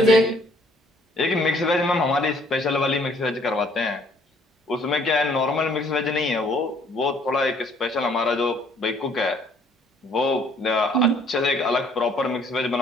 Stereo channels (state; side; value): normal; both; correlation 0.62